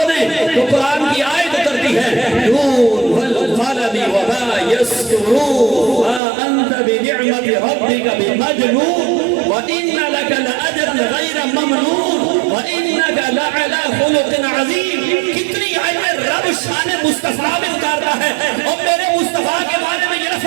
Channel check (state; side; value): drops out; left; at 6.2 s